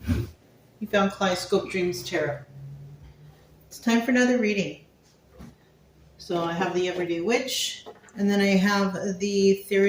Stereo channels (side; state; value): both; identical; correlation 1.00